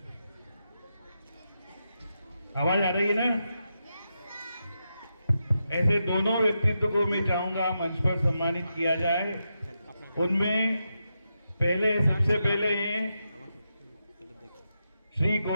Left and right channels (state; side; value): inverted; both; correlation -0.86